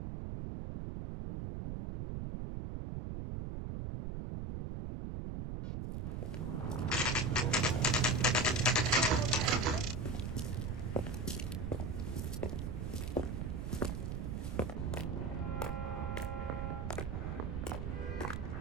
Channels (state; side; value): noise; right; rumble, 3 dB below the sound